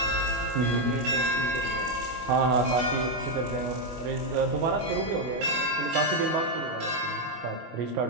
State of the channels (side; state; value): left; late; 25 ms